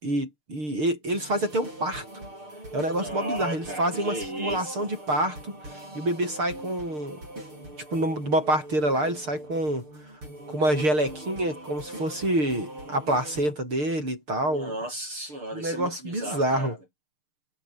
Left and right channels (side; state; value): left; late; 6.6 ms